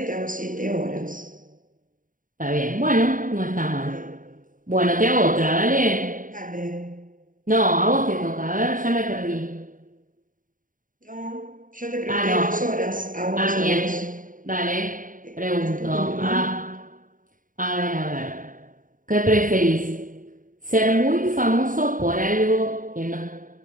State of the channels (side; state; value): left; late; 0.39 ms